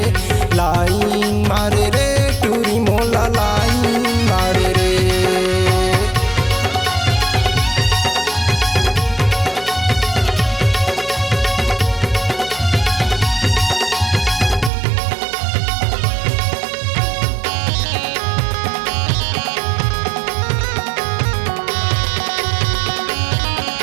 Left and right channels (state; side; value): drops out; left; at 14.7 s